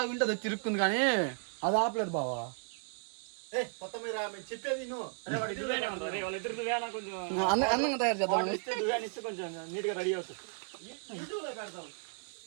ఉంటది తిరుక్కుంది కానీ అది ఆపలేదు బావా. కొత్తమీర చెప్పేది అందంగా తయారు చేద్దాం, కొంచెం నీట్ గా రెడీ అవుతుంది.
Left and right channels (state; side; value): silent; left; 55 dB below the other